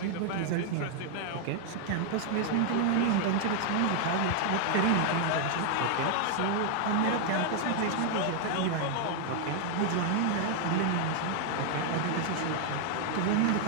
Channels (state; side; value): different; both; correlation 0.00